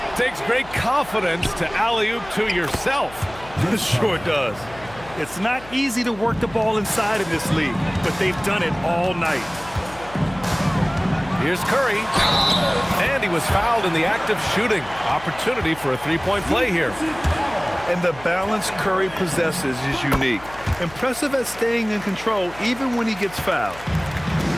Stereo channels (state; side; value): noise; left; hum, 19 dB below the sound